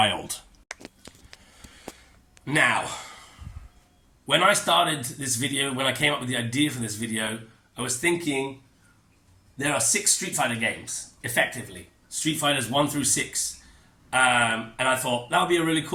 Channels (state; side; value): identical; both; correlation 1.00